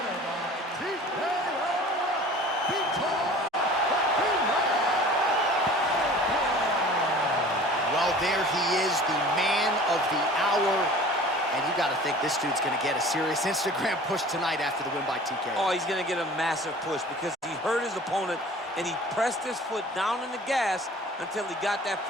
by TKO, Vitor. Well, there he is, the man of the hour. And you got to think this dude's going to get a serious Instagram push tonight after the win by TKO. Oh, he's going to get a massive push because he hurt his opponent and he pressed his foot down in the gas until he got that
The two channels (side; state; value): both; normal; correlation 0.44